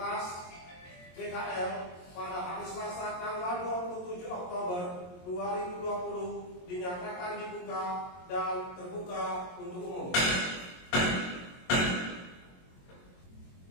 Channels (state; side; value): late; right; 22 ms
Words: BKL pada hari Selasa tanggal 27 Oktober 2020 dinyatakan dibuka dan terbuka untuk umum.